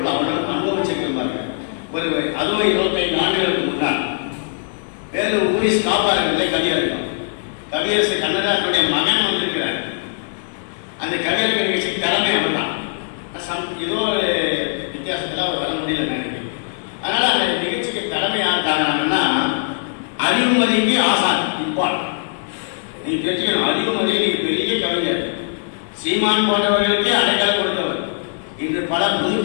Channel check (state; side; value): silent; right; digital silence